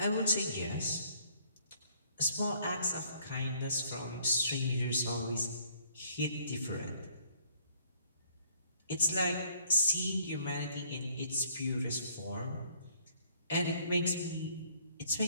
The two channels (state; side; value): inverted; both; correlation -0.63